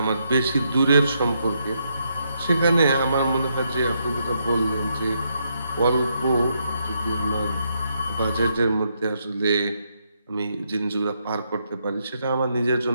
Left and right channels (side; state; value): both; inverted; correlation -0.78